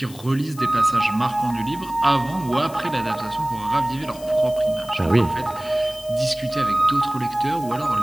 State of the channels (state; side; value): noise; left; hiss, 19 dB below the sound